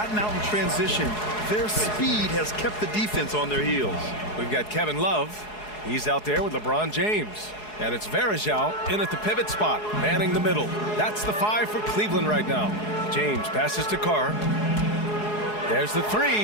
out in transition. Their speed has kept the defense on their heels. We've got Kevin Love. He's out there with LeBron James. And it's Varejao in at the pivot spot, manning the middle. That's the 5 for Cleveland right now. James passes to Carr. There's the 3.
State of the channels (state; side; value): late; right; 4.7 ms